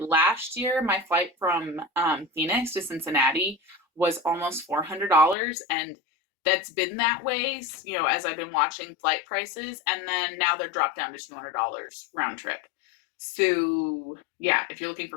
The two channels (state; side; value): drops out; right; at 5.4 s